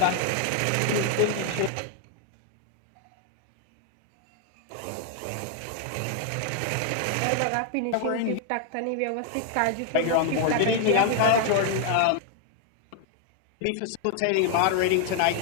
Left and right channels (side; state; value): both; different; correlation 0.00